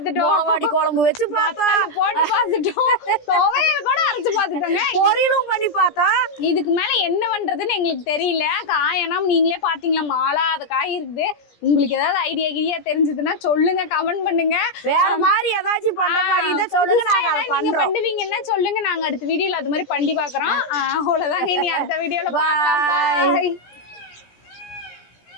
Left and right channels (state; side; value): late; right; 17 ms